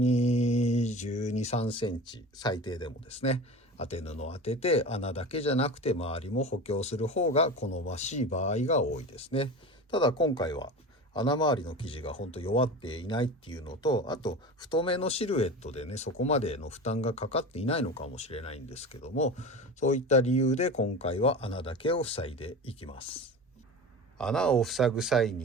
12、3センチ最低でもですね、当て布を当てて穴だけじゃなくて周りも補強する方が好ましい場合が多いですね。ただ今回は穴周りの生地が本当弱っていないっていうのと、あと太めのシルエットでねそこまでの負担がかかっていないのかもしれないんですけども、そういった理由で今回は穴だけを塞いでいきます。穴を塞ぐ際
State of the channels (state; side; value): normal; both; correlation 0.31